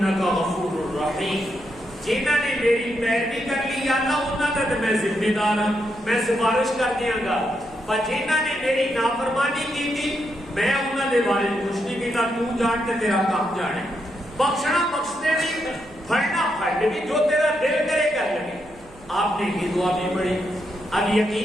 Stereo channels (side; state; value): right; noise; hum, 24 dB below the sound